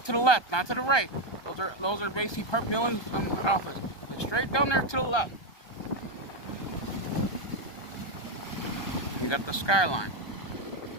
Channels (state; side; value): late; right; 1.2 ms